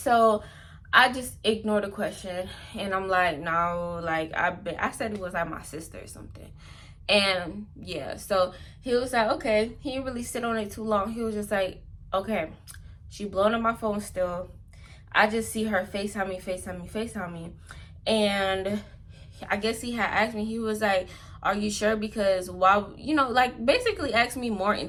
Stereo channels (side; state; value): both; identical; correlation 1.00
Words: I just ignored the question, and I'm like, no, like I said it was like my sister or something. And yeah, so he was like, okay. He didn't really sit on it too long. He was just like, okay, she blowing up my phone still. I just see her FaceTime me. And I guess he had asked me, he was like, are you sure? Because why, you know, like basically asked me more